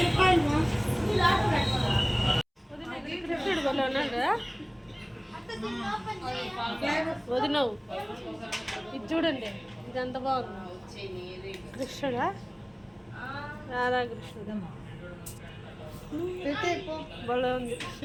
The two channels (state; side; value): identical; both; correlation 1.00